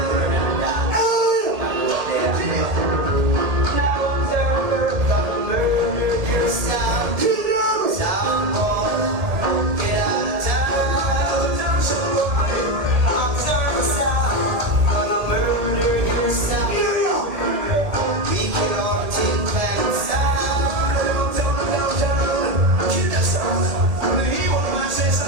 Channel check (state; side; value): late; left; 1.8 ms